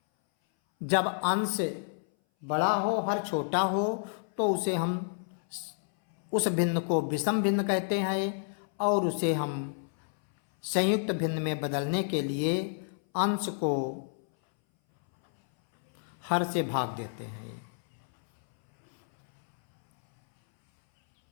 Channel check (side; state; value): right; silent; 58 dB below the other